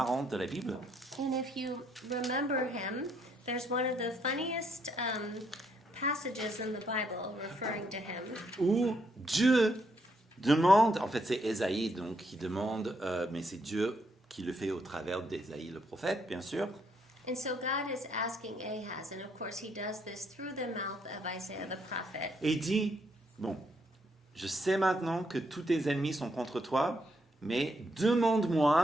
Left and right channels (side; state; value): both; normal; correlation 0.74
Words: de la Bible. And if you remember him, there's one of the funniest passages in the Bible referring to him. où Dieu demande, en fait c'est Ésaïe donc qui demande, mais c'est Dieu qui le fait au travers d'Ésaïe le prophète, bien sûr. And so God is asking Ahaz, and of course he does this through the mouth of Isaiah the prophet. Et il dit, bon, je sais maintenant que tous tes ennemis sont contre toi, mais